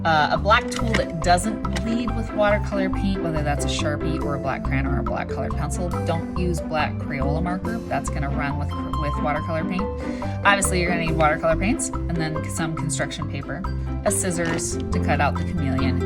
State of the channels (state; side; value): identical; both; correlation 1.00